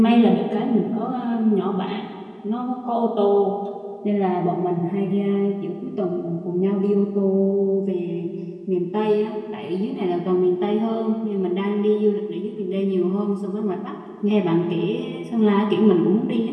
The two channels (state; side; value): identical; both; correlation 1.00